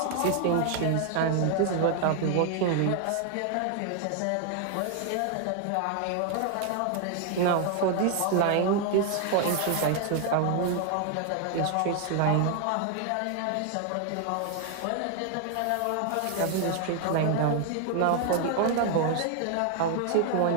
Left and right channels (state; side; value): different; both; correlation 0.00